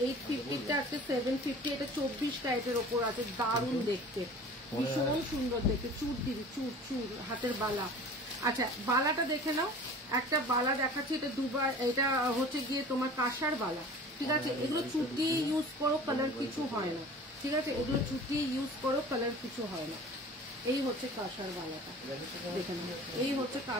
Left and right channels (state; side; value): normal; both; correlation 0.42